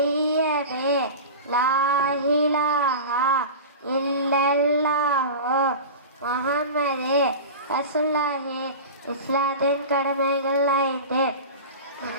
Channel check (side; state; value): both; inverted; correlation -0.30